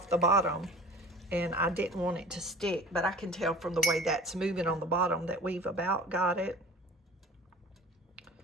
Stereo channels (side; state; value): both; normal; correlation 0.42